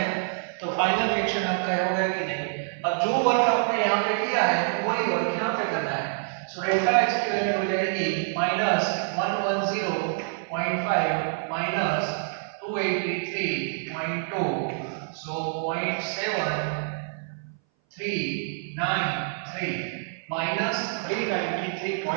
तो फाइनल रिएक्शन आपका होगा कि नहीं। अब जो वर्क आपने यहाँ पे किया है वही वर्क यहाँ पे करना है। सो डेल्टा H की वैल्यू हो जाएगी minus 110.5 minus 283.2, so 0.7393 minus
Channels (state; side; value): silent; left; 59 dB below the other